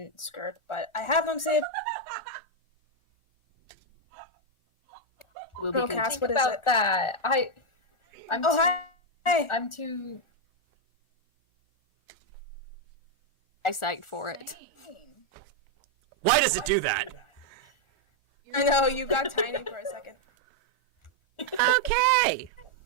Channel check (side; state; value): right; late; 1.4 ms